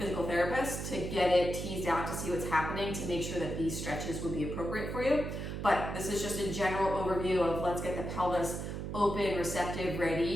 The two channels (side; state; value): right; noise; hum, 5 dB below the sound